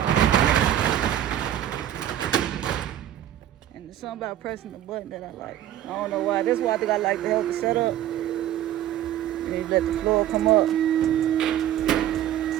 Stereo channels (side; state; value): left; quieter; 11.9 dB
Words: And there's something about pressing the button that I like. I don't know why. That's why I think I like to help it set up. And you let the floor come up.